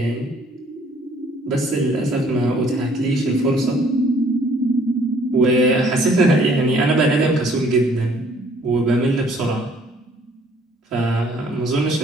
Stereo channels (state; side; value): normal; both; correlation 0.60